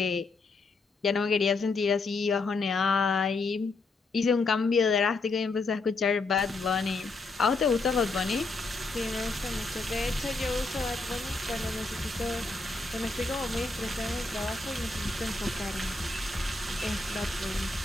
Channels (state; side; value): quieter; right; 3.6 dB